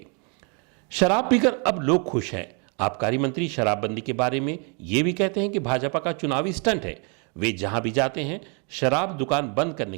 शराब पीकर अब लोग खुश हैं। आबकारी मंत्री शराबबंदी के बारे में यह भी कहते हैं कि भाजपा का चुनावी स्टंट है। वे जहां भी जाते हैं शराब दुकान बंद करने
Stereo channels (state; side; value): quieter; left; 36.1 dB